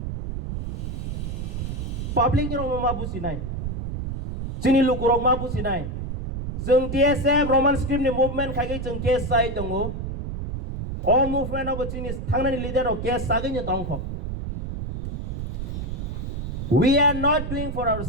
Public ni orang mabusi nai. Sini lu kurang mabusi nai. Seng TSF Roman script ni movement kaki jeng case sai tongo. All movement of sini tangna ni leader of case sagi ni tongko. We are not doing for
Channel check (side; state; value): right; noise; rumble, 5 dB below the sound